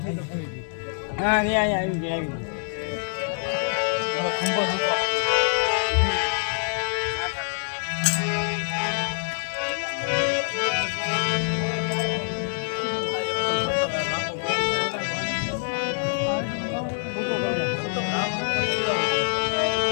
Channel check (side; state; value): right; silent; digital silence